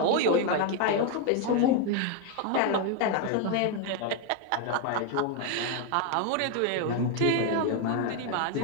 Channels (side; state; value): both; different; correlation 0.01